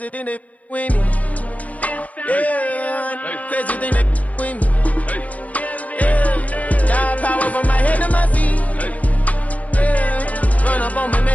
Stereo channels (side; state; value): right; late; 0.070 ms